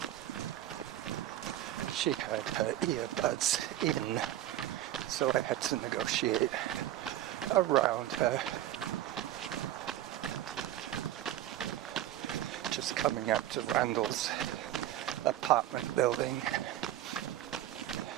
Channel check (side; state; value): left; quieter; 12.9 dB